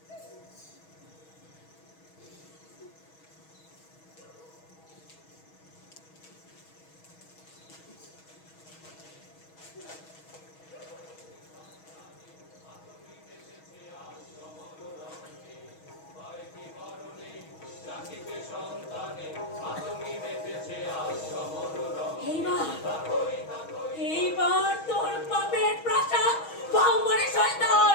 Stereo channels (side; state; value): right; late; 6.3 ms